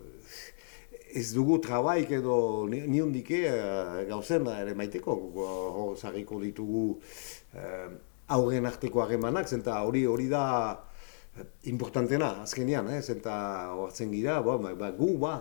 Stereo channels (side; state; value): right; silent; digital silence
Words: ez dugu trabaik edo niondike gauzen ere maiteko, zarriko ditugu aurren arteko harremanak, zenta hori da importantena azkenean, zenta hortzen gira, gu,